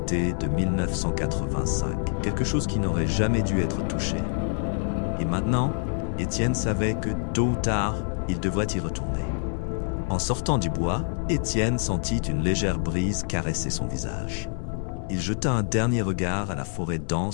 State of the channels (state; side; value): silent; right; 61 dB below the other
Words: de 1985, quelque chose qui n'aurait jamais dû être touché. Et maintenant, Étienne savait que, tôt ou tard, il devrait y retourner. En sortant du bois, Étienne sentit une légère brise caresser son visage. Il jeta un dernier regard à la forêt